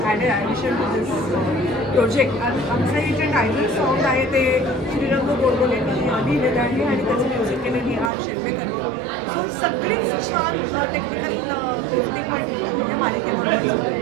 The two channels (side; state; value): left; drops out; at 8.1 s